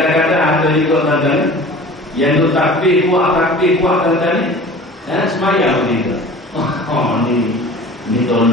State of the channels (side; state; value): both; normal; correlation 0.41